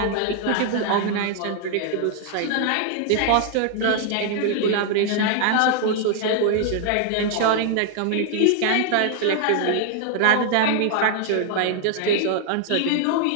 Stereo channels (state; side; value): different; both; correlation 0.00